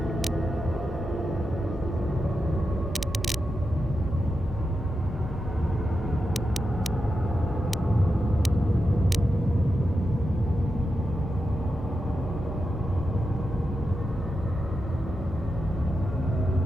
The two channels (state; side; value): normal; both; correlation 0.89